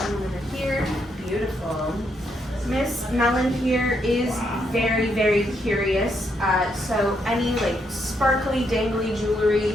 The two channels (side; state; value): both; normal; correlation 0.77